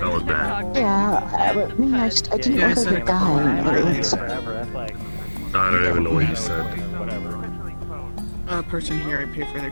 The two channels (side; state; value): both; inverted; correlation -1.00